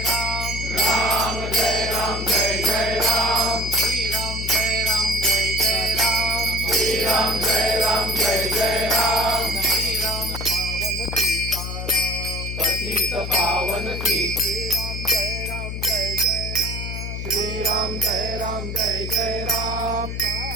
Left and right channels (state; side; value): noise; left; hum, 5 dB below the sound